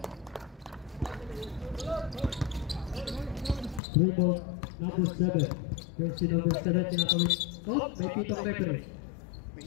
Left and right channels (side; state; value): right; drops out; at 3.8 s